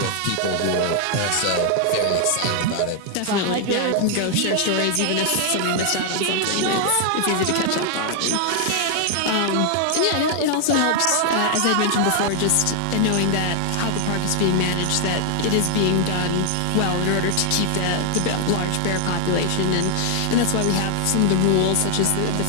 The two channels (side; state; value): both; different; correlation 0.00